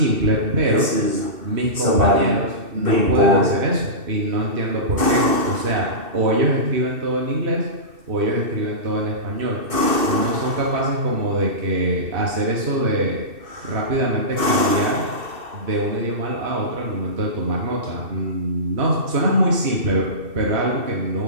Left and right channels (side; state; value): left; late; 2.6 ms